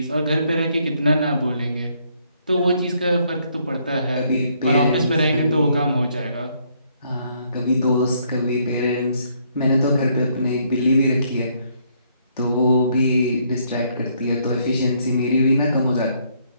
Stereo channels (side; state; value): both; inverted; correlation -0.70